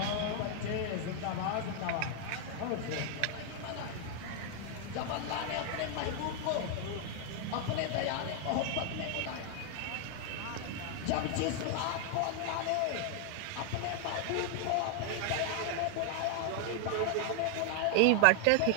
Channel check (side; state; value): both; different; correlation 0.00